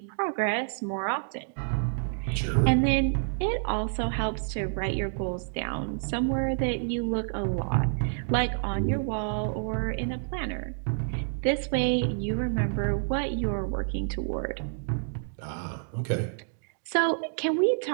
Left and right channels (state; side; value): silent; left; digital silence